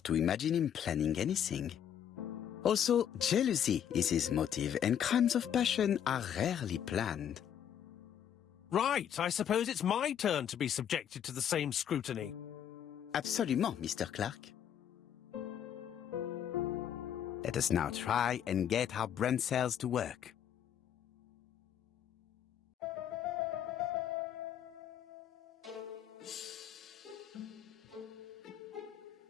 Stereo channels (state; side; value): quieter; right; 9.3 dB